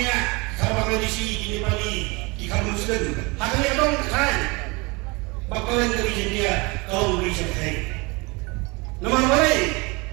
sabang edisi ini bali di kamu muslim. Haknya dong kan. Bakalan dari dia kau beri saya. Nama boleh,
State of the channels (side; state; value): left; quieter; 26.8 dB